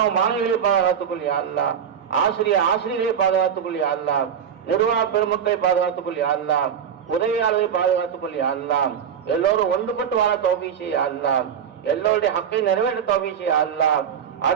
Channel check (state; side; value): quieter; left; 8.1 dB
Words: மாணவிகளை பாதுகாத்துக்கொள் யா அல்லாஹ், ஆசிரியர்களை பாதுகாத்துக்கொள் யா அல்லாஹ், நிர்வாக பெருமக்களை பாதுகாத்துக்கொள் யா அல்லாஹ், உதவியாளர்களை பாதுகாத்துக்கொள் யா அல்லாஹ், எல்லோரும் ஒன்றுபட்டு வாழ தௌஃபீக் செய் யா அல்லாஹ், எல்லோருடைய ஹக்கை நிறைவேற்ற தௌஃபீக் செய் யா அல்லாஹ்,